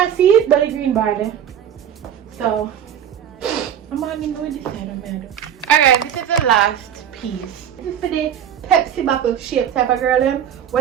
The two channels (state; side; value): quieter; left; 9.1 dB